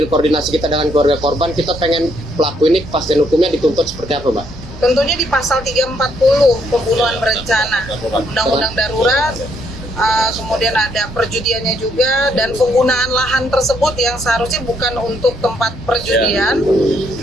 koordinasi kita dengan keluarga korban, kita pengen pelaku ini kepastian hukumnya dituntut seperti apa, Mbak? Tentunya di pasal 340 pembunuhan berencana, undang-undang darurat, kemudian ada perjudiannya juga, dan penggunaan lahan tersebut yang seharusnya bukan untuk tempat perjudian.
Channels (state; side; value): normal; both; correlation 0.71